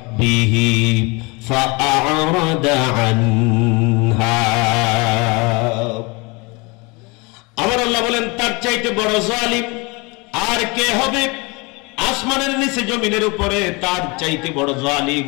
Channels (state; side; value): quieter; right; 27.5 dB